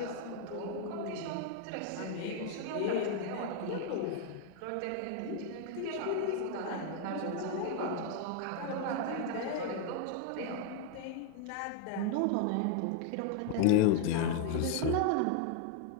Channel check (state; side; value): different; both; correlation 0.00